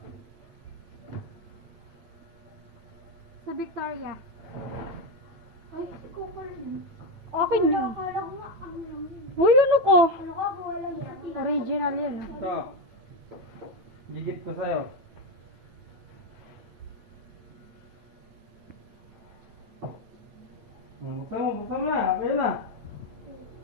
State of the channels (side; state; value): left; late; 9.1 ms